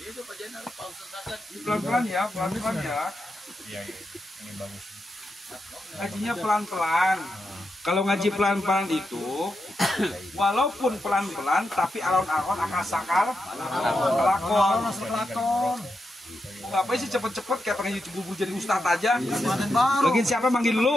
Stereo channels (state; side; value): normal; both; correlation 0.86